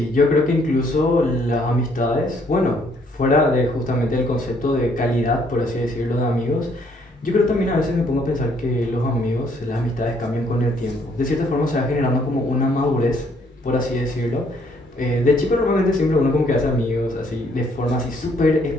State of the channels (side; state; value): both; normal; correlation 0.66